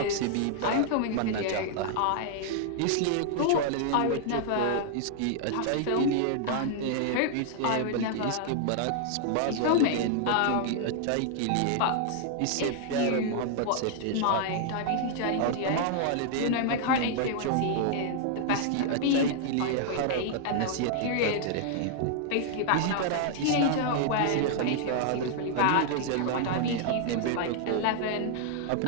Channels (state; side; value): different; both; correlation 0.00